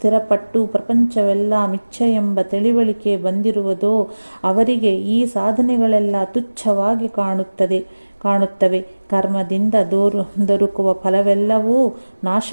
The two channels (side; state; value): both; inverted; correlation -1.00